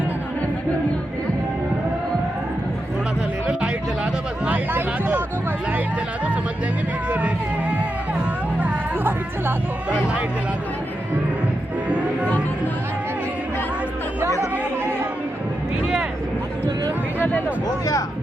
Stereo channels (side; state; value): both; normal; correlation 0.87